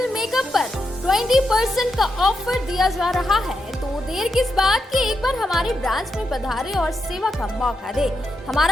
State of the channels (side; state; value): both; normal; correlation 0.85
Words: मेकअप पर 20% का ऑफर दिया जा रहा है। तो देर किस बात की, एक बार हमारे ब्रांच में पधारे और सेवा का मौका दे।